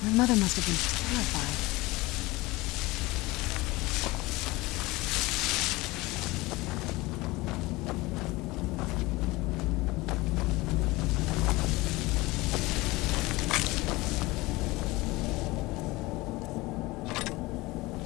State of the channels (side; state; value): right; quieter; 21.4 dB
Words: My mother must have been terrified.